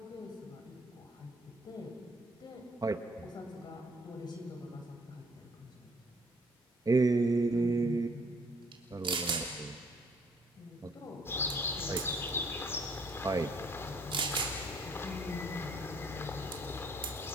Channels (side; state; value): both; normal; correlation 0.61